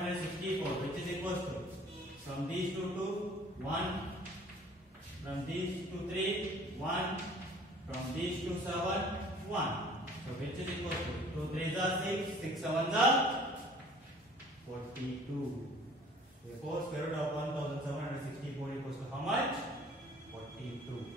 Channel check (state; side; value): normal; both; correlation 0.52